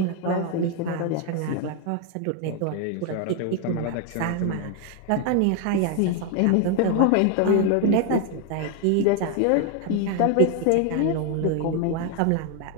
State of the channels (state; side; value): different; both; correlation 0.00